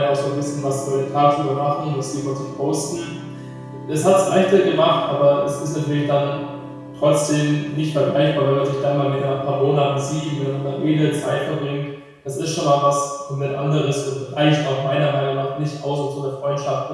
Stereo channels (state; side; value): identical; both; correlation 1.00